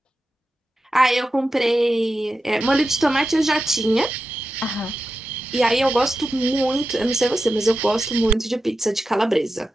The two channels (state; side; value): normal; both; correlation 0.91